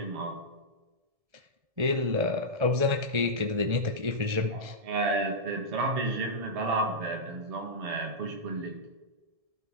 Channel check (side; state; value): left; late; 1.7 ms